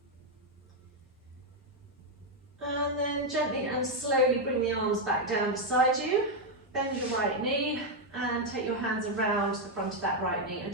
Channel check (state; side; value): normal; both; correlation 0.02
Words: And then gently and slowly bring the arms back down beside you. Bend your right knee and take your hands around the front of that right knee and